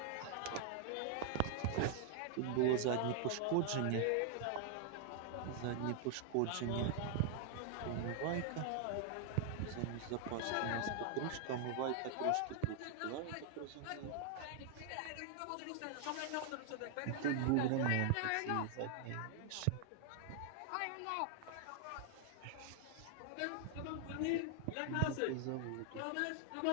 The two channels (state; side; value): different; both; correlation 0.00